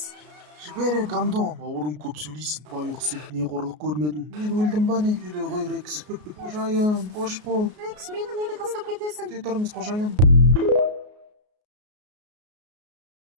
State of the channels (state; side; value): late; left; 33 ms